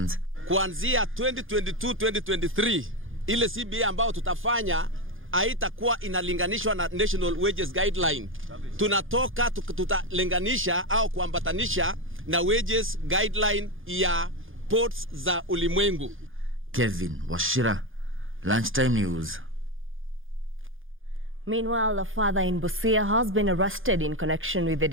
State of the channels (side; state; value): left; late; 0.59 ms